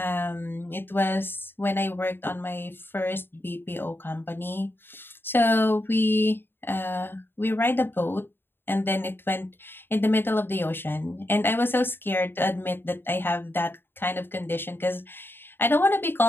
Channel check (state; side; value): late; right; 0.10 ms